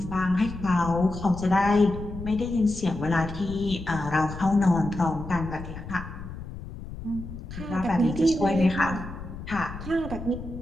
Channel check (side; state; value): left; noise; rumble, 11 dB below the sound